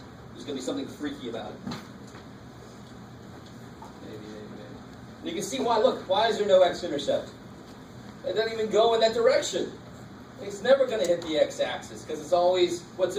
There's going to be something freaky about it. Maybe. And you can see why. Look, why is there no x-intercept? It doesn't even go in that direction. It's never going to hit the x-axis because it's always,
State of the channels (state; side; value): identical; both; correlation 1.00